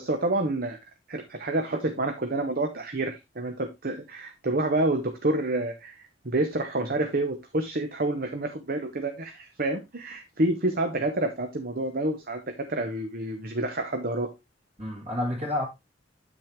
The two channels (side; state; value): both; normal; correlation 0.17